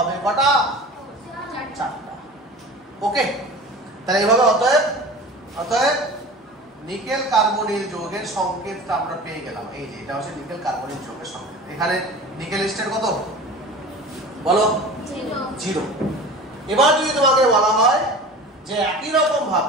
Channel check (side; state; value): both; normal; correlation 0.37